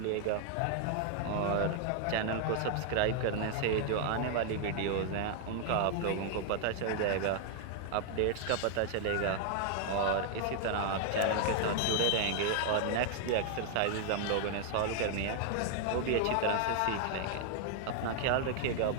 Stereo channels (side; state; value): both; different; correlation 0.00